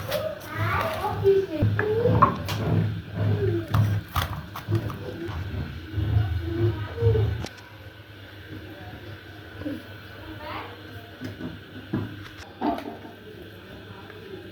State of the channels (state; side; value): identical; both; correlation 1.00